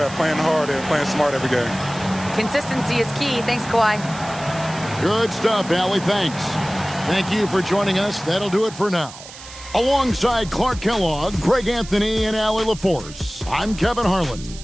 playing hard and playing smart every game. Consistency is key. Thanks, Kawhi. Good stuff, Allie. Thanks. Thank you for joining us. That'll do it for now. Alongside Clark Kellogg, Greg Anthony, and Allie LaForce, I'm Kevin Harlan.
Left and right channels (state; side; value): noise; right; hiss, 16 dB below the sound